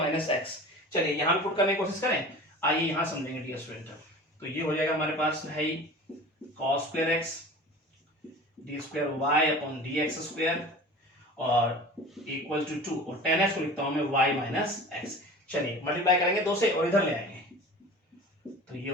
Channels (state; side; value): normal; both; correlation 0.38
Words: x। चलिए यहाँ पे पुट करने की कोशिश करें, आइए यहाँ समझेंगे डियर स्टूडेंट। तो ये हो जाएगा हमारे पास है cos square x d square y upon dx square और इक्वल टू 2, और 10x को लिखता हूं मैं y माइनस x। चलिए मल्टीप्लाई करेंगे 2 से और इधर ले आएंगे, तो ये